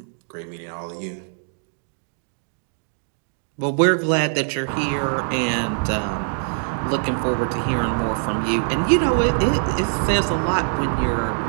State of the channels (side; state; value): left; silent; digital silence